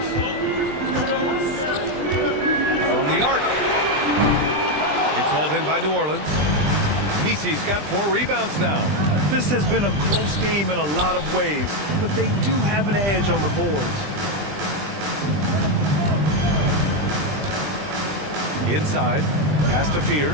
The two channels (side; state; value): left; late; 20 ms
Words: From the arc. It's hauled in by New Orleans. Misi's got 4 rebounds now. This has been a close game in a lot of ways, but they do have an edge on the boards. Inside, pass to